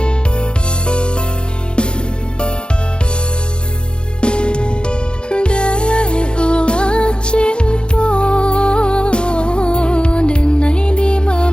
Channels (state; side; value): late; right; 0.051 ms